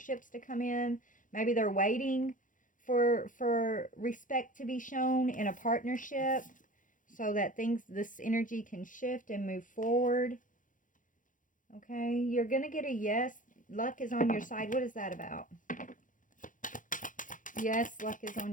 to come in. Maybe they're waiting for respect to be shown in a partnership, so that this energy can shift and move forward. Okay, you're going to get a yes. Luck is on your side. What is that about? Yes, luck is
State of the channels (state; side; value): late; right; 0.38 ms